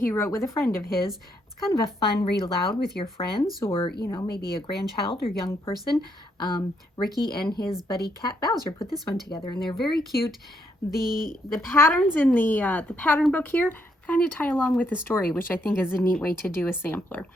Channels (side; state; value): both; normal; correlation 0.75